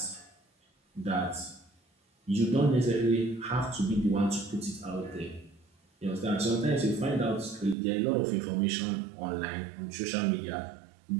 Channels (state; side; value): drops out; left; at 7.8 s